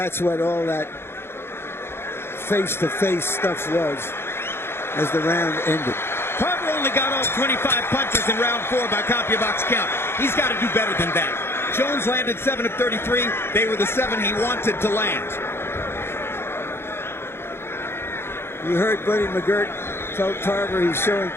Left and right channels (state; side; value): late; right; 0.12 ms